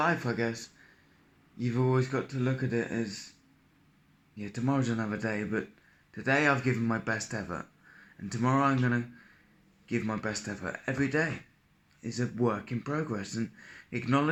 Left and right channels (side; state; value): both; identical; correlation 1.00